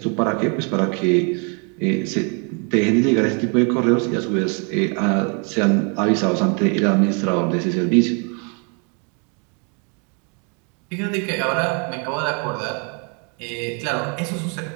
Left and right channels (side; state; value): left; quieter; 36.6 dB